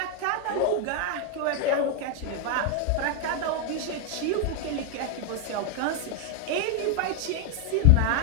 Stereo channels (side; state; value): both; different; correlation 0.01